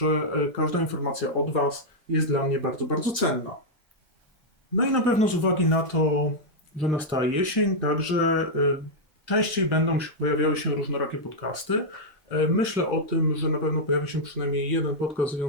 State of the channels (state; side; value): normal; both; correlation -0.05